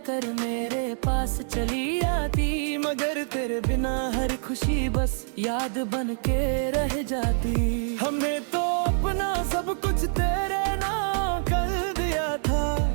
मेरे पास चली आती। मगर तेरे बिना हर खुशी बस याद बन के रह जाती। हमने तो अपना सब कुछ तेरे नाम कर दिया था।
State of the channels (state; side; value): silent; left; digital silence